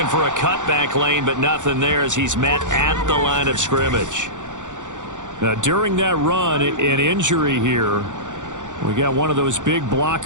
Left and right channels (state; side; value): late; left; 0.86 ms